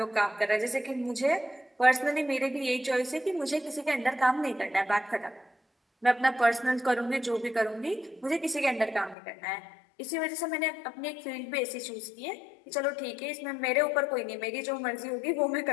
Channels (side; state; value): right; drops out; at 9.2 s